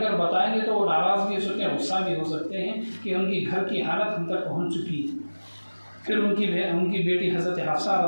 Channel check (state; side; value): inverted; both; correlation -1.00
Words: بتائیں گے تو وہ ناراض بھی ہو سکتے ہیں، غصہ بھی ہو سکتے ہیں کہ ان کی گھر کی حالت ہم تک پہنچ چکی ہے۔ پھر ان کی بیٹی حضرت حفصہ